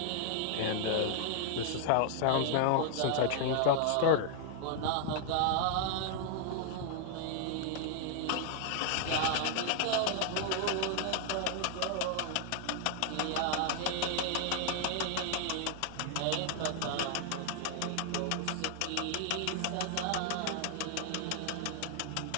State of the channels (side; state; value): both; different; correlation 0.00